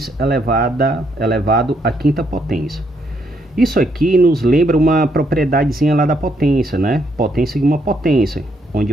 elevado à quinta potência. Isso aqui nos lembra uma propriedadezinha lá da potência, né? Potência de uma potência, onde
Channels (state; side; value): normal; both; correlation 0.74